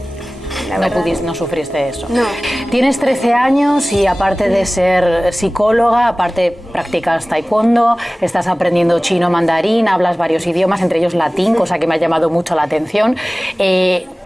sufriste eso. No. Tienes 13 años y aparte de ser psicóloga, aparte practicas taekwondo, estás aprendiendo chino, mandarín, hablas varios idiomas, entre ellos latín, cosa que me ha llamado mucho la atención.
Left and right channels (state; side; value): normal; both; correlation 0.98